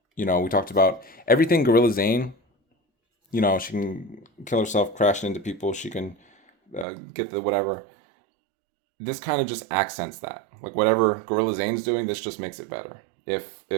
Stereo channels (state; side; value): drops out; left; at 6.9 s